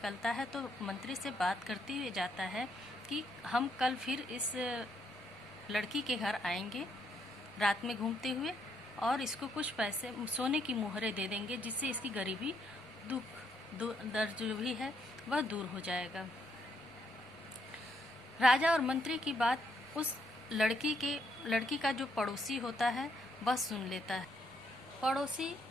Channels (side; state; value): right; noise; rumble, 25 dB below the sound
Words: है तो मंत्री से बात करते हुए जाता है कि हम कल फिर इस लड़की के घर आएंगे रात में घूमते हुए, और इसको कुछ पैसे सोने की मुहरें दे देंगे जिससे इसकी गरीबी दर्द जो भी है वह दूर हो जाएगा। राजा और मंत्री की बात उस लड़की का जो पड़ोसी होता है वह सुन लेता है। पड़ोसी